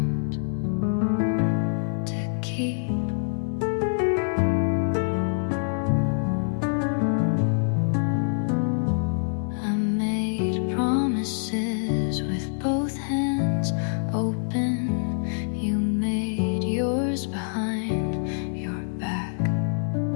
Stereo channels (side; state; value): right; silent; 61 dB below the other